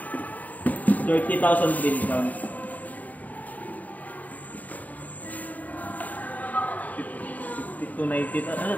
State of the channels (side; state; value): right; late; 0.076 ms